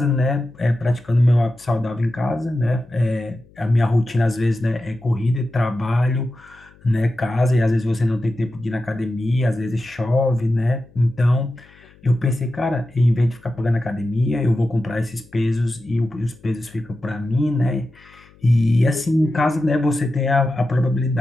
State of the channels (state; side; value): noise; left; hum, 27 dB below the sound